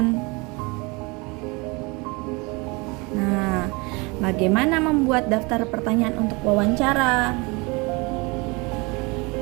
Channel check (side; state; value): left; quieter; 27.3 dB